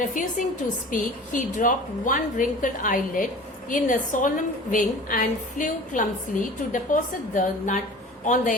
refusing to speak, he dropped one wrinkled eyelid in a solemn wing and flew clumsily to deposit the nut on the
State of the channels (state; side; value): normal; both; correlation 0.41